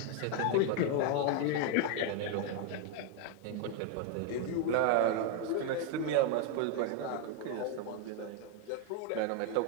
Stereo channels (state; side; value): different; both; correlation 0.01